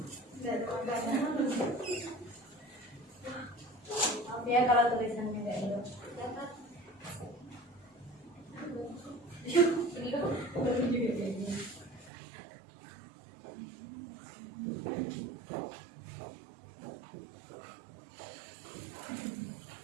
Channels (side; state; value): left; drops out; at 12.1 s